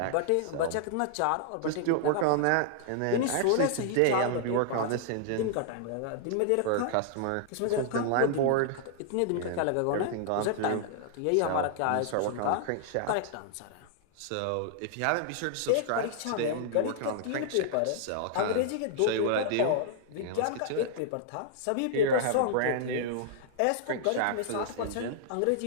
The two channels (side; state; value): both; different; correlation -0.01